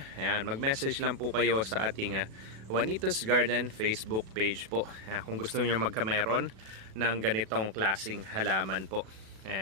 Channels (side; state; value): left; late; 37 ms